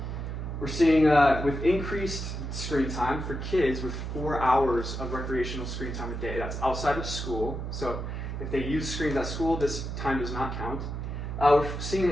We're seeing with increased screen time for kids with 4 hours of recreational screen time a day. That's outside of school. So if they use screens at school, this time does not count. We're seeing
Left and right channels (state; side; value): noise; right; hum, 5 dB below the sound